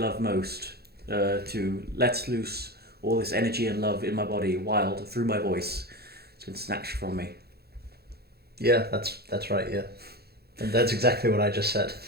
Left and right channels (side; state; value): left; late; 0.46 ms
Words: most, to let loose all this energy and love in my body, wild, through my voice. It's been snatched from me. Yeah, that's right, yeah. And that's exactly what I just said.